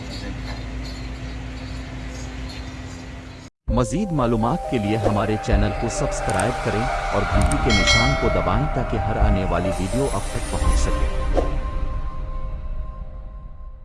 दिखाएंगे। मज़ीद मालूमात के लिए हमारे चैनल को सब्सक्राइब करें और घंटी के निशान को दबाएं ताकि हर आने वाली वीडियो आप तक पहुंच सके।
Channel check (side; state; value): both; identical; correlation 1.00